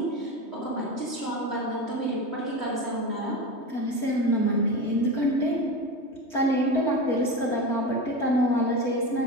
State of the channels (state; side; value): late; right; 3.2 ms